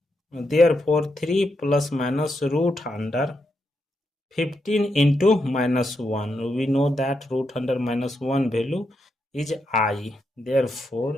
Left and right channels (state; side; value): normal; both; correlation 0.83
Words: Therefore, 3 plus minus root under 15 into minus 1. We know that root under minus 1 value is I.